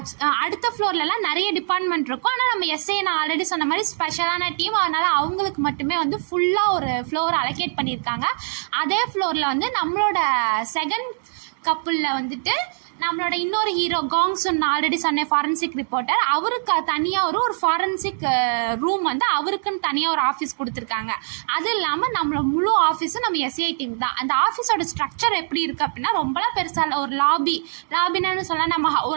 அடுத்த ஃப்ளோர்லலாம் நிறைய டிபார்ட்மெண்ட் இருக்கும். ஆனால் நம்ம எஸ்ஐ நான் ஆல்ரெடி சொன்ன மாதிரி ஸ்பெஷலான டீம், அதனால் அவங்களுக்கு மட்டுமே வந்து ஃபுல்லாக ஒரு ஃப்ளோர் அலோகேட் பண்ணியிருக்காங்க. அதே ஃப்ளோரில் வந்து நம்மளோட செகண்ட் கப்புளில் வந்துட்டு நம்மளோட இன்னொரு ஹீரோ காங்சுன் ஆல்ரெடி சொன்னேன், ஃபாரன்சிக் ரிப்போர்ட்டர், அவருக்கு தனியாக ஒரு ஃபாரன்சிக் ரூம் வந்து அவருக்குன்னு தனியாக ஒரு ஆஃபீஸ் கொடுத்துருக்காங்க. அது இல்லாமல் நம்மளோட முழு ஆஃபீஸும் நம்ம எஸ்ஐ டீம் தான். அந்த ஆஃபீஸோட ஸ்ட்ரக்சர் எப்படி இருக்குது அப்படின்னா, ரொம்பலாம் பெருசாக இல்லை. ஒரு லாபின்னு சொல்ல நம்ம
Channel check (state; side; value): silent; left; digital silence